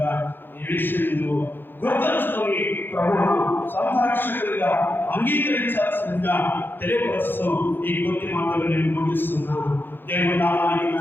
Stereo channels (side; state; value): right; late; 0.099 ms